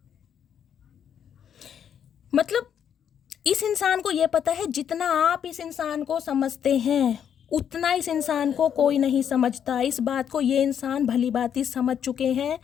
मतलब इस इंसान को ये पता है, जितना आप इस इंसान को समझते हैं उतना इस इंसान को कोई नहीं समझता। इस बात को ये इंसान भली भांति समझ चुके हैं।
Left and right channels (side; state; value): right; quieter; 8.6 dB